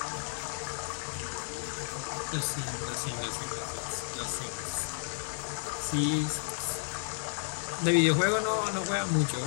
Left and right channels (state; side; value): silent; right; digital silence